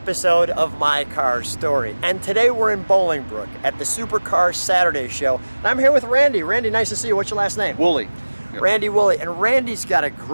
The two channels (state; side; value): inverted; both; correlation -1.00